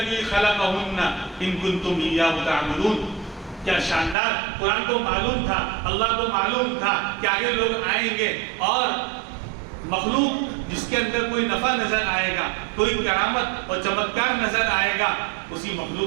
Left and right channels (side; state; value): left; drops out; at 4.2 s